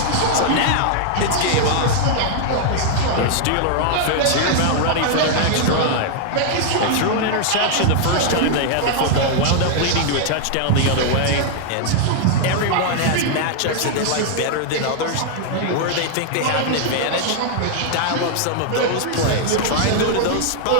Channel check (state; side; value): different; both; correlation -0.01